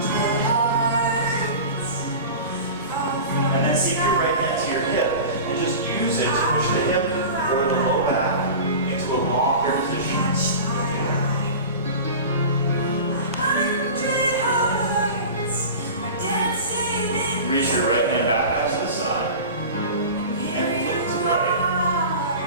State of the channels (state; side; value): inverted; both; correlation -0.33